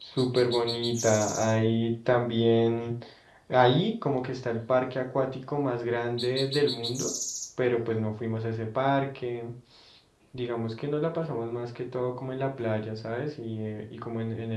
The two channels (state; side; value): identical; both; correlation 1.00